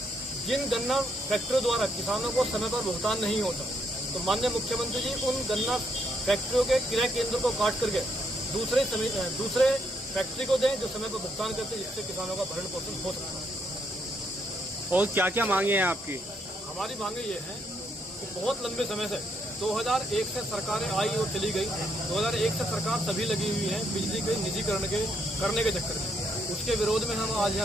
जिन गन्ना फैक्ट्रियों द्वारा किसानों को समय पर भुगतान नहीं होता, तो माननीय मुख्यमंत्री जी उन गन्ना फैक्ट्रियों के क्रय केंद्र को काट करके दूसरे फैक्ट्री को दें जो समय पर भुगतान करते, जिससे किसानों का भरण पोषण हो सकता है। और क्या क्या मांगे हैं आपकी? हमारी मांगे ये हैं कि बहुत लंबे समय से 2001 से सरकारें आई और चली गई। 2001 से सरकार सभी लगी हुई है बिजली के निजीकरण करने के चक्कर में। उसके विरोध में हम आज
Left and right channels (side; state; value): both; normal; correlation 0.74